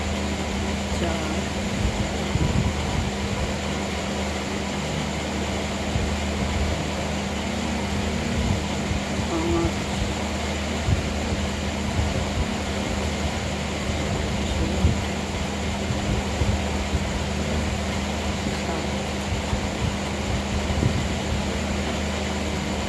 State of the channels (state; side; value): identical; both; correlation 1.00